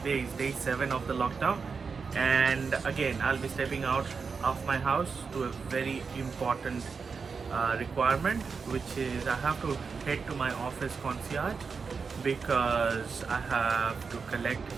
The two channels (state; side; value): quieter; left; 5.3 dB